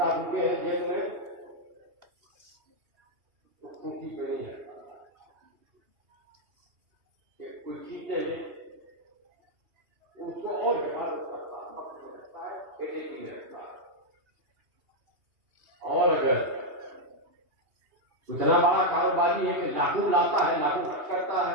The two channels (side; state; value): left; late; 2.8 ms